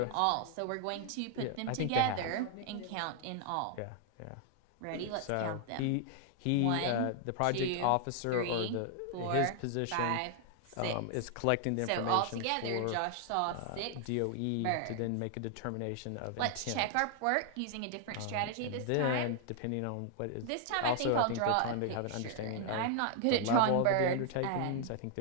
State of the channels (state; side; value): different; both; correlation 0.00